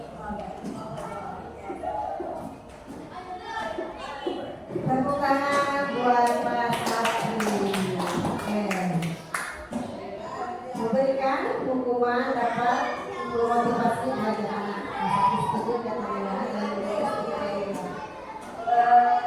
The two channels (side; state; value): both; identical; correlation 1.00